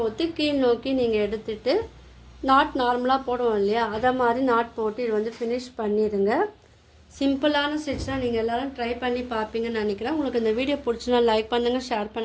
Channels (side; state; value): both; identical; correlation 1.00